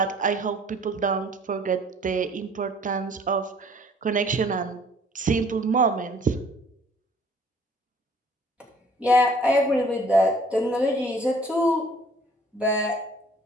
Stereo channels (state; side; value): normal; both; correlation 0.56